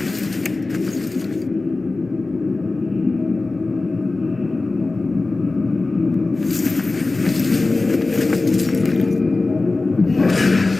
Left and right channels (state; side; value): quieter; right; 3.4 dB